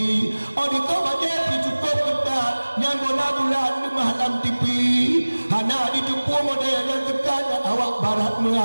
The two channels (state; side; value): inverted; both; correlation -1.00